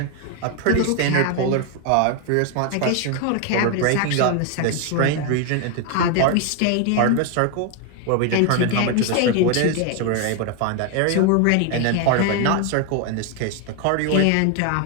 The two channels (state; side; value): different; both; correlation 0.01